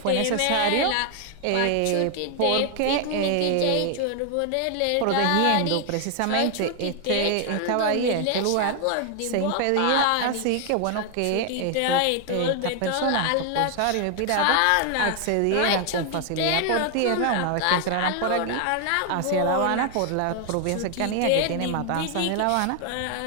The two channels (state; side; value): different; both; correlation 0.00